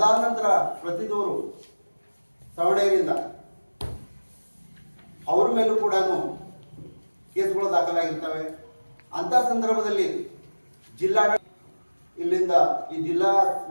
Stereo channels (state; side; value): inverted; both; correlation -1.00